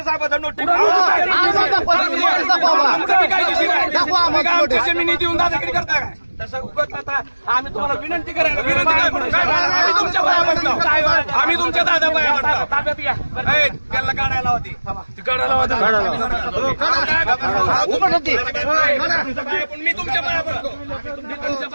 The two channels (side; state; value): both; inverted; correlation -1.00